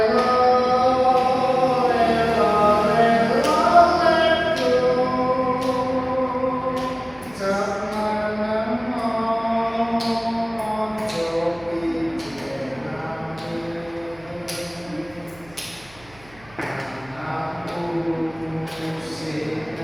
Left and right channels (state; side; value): noise; right; hum, 25 dB below the sound